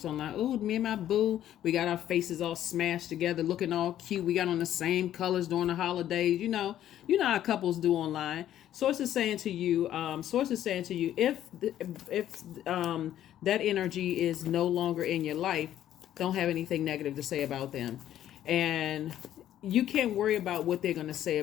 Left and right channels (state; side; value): quieter; right; 11.7 dB